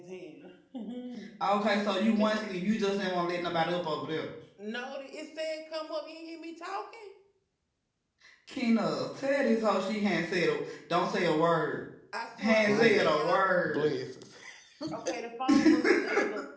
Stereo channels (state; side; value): identical; both; correlation 1.00